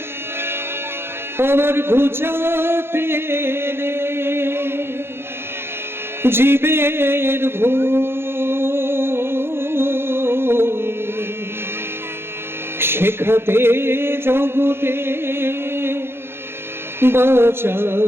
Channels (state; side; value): late; left; 0.11 ms